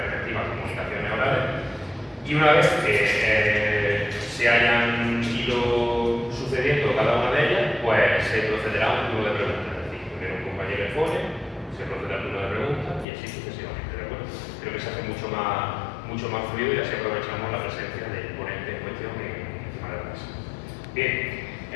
comunicaciones orales. Y una vez que se hayan ido sucediendo cada una de ellas, pues se procederá a un turno de preguntas. Es decir, primero un compañero expone, se procederá al turno de preguntas y así sucesivamente, ¿de acuerdo? Creo que se hace mucho más fluido y así aprovechamos la presencia del ponente en cuestión encima de la mesa. Bien,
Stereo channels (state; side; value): drops out; right; at 13.1 s